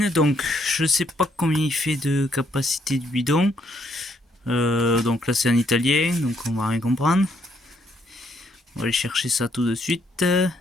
Donc je sais pas combien il fait de capacité de bidon. Donc là c'est en italien, donc on va rien comprendre. On va aller chercher ça tout de suite.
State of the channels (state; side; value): normal; both; correlation 0.71